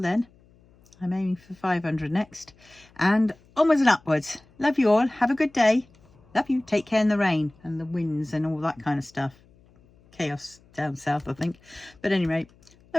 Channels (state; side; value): noise; left; hum, 29 dB below the sound